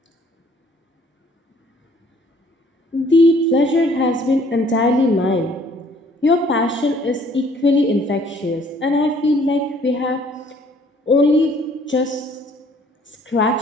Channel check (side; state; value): both; normal; correlation 0.59